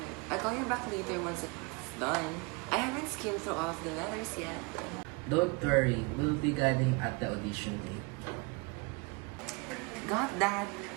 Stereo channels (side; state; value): left; quieter; 29.9 dB